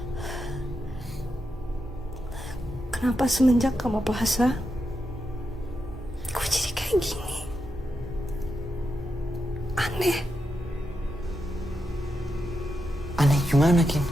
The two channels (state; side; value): normal; both; correlation 0.86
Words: Kenapa semenjak kamu puasa, gue jadi kayak gini? Aneh. Aneh gimana, Kin?